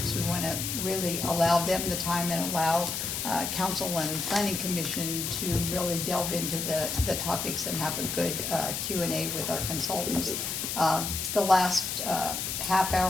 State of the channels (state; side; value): noise; left; hiss, 3 dB below the sound